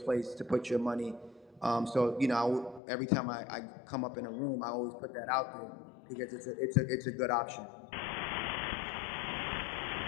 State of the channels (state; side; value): drops out; right; at 2.8 s